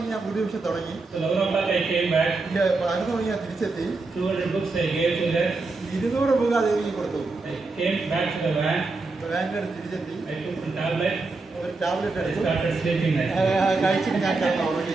ഞാൻ പുതിയ വിഷയം തുടങ്ങി. So 11 o'clock I came back. 11 മണിക്ക് ഞാൻ തിരിച്ചെത്തി. 200 books I gave to her. 200 book ദേവിക്ക് കൊടുത്തു. I came back to the van. വാനിൽ തിരിച്ചെത്തി. I took some tablet. ഒരു ടാബ്ലറ്റ് I എടുത്തു. started sleeping. കഴിച്ചിട്ട് ഞാൻ കിടന്നു ഉറങ്ങി.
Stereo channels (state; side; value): quieter; left; 3.7 dB